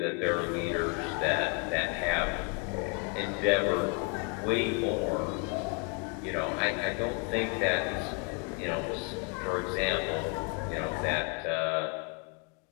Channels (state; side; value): quieter; right; 33.1 dB